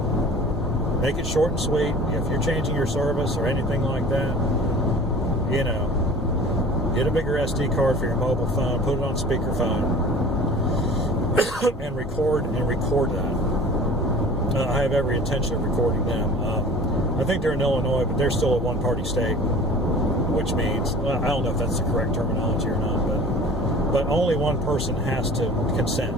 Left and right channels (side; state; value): both; normal; correlation 0.43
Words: Make it short and sweet. If you're changing your service or anything like that, get a bigger SD card for your mobile phone, put it on speakerphone, and record that. I have every intention of recording them. I think they're in Illinois, but they're still a one-party state, which means, I don't know if that's the correct terminology or not, but only one person has to